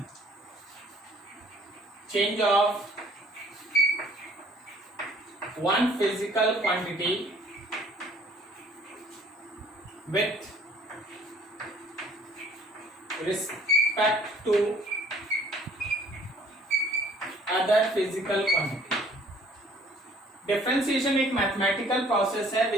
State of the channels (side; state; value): both; normal; correlation 0.56